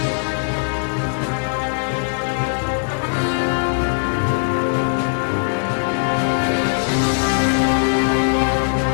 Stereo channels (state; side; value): silent; right; 66 dB below the other